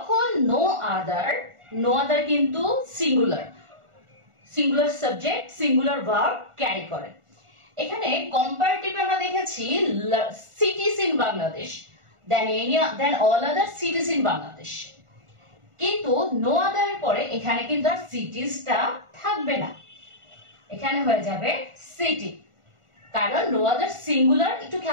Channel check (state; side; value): late; left; 1.4 ms